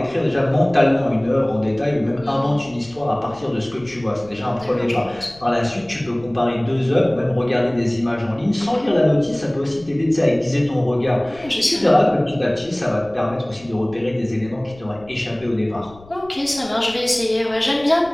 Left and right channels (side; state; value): left; noise; rumble, 23 dB below the sound